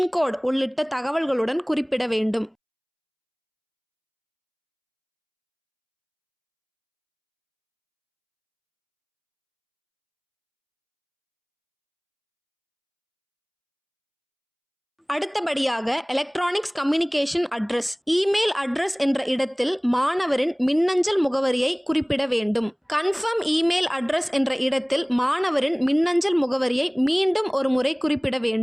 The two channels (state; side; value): identical; both; correlation 1.00